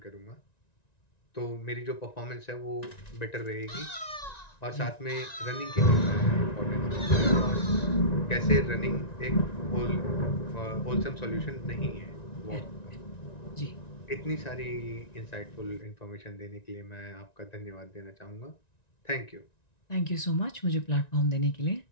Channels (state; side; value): late; right; 1.9 ms